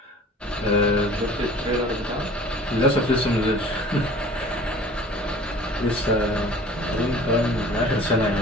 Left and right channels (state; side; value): normal; both; correlation 0.45